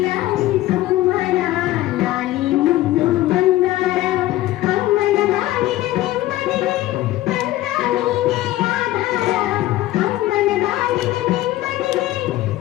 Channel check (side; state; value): right; quieter; 15.9 dB